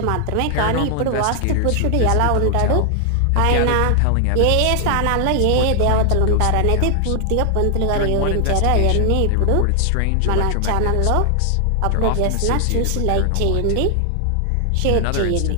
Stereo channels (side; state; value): both; different; correlation 0.00